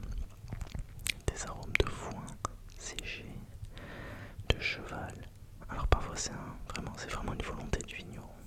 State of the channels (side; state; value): both; identical; correlation 1.00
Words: des arômes de foin séché, de cheval. Alors parfois c'est vraiment une volonté du vigneron,